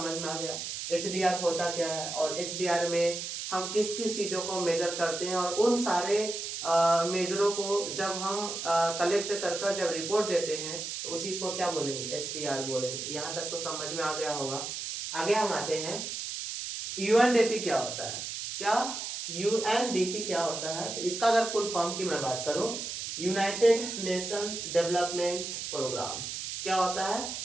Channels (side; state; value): right; noise; hiss, 5 dB below the sound